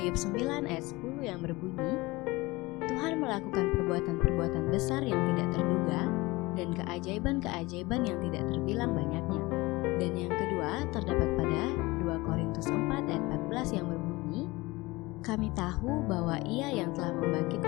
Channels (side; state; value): right; quieter; 22.0 dB